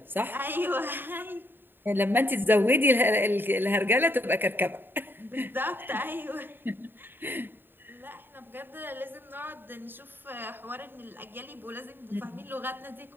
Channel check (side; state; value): left; late; 0.096 ms